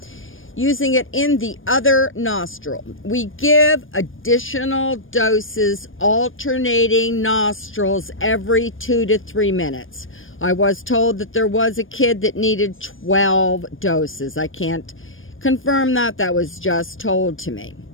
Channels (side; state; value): right; late; 0.59 ms